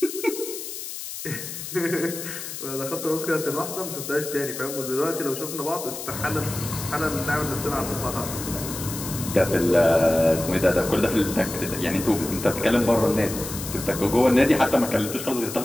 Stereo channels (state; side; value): noise; left; hiss, 8 dB below the sound